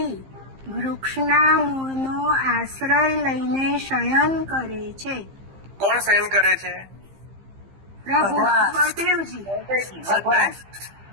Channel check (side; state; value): left; late; 15 ms